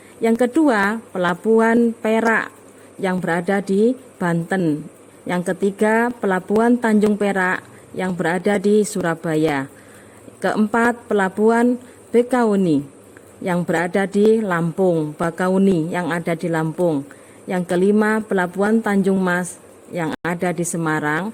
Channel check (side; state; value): both; identical; correlation 1.00